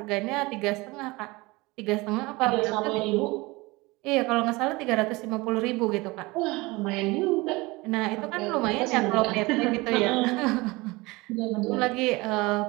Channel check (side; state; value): left; quieter; 22.9 dB